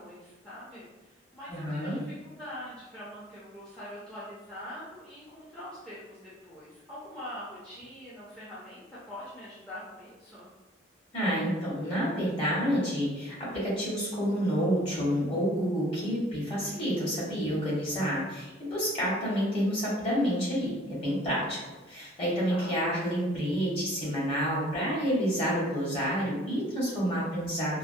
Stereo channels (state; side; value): normal; both; correlation 0.54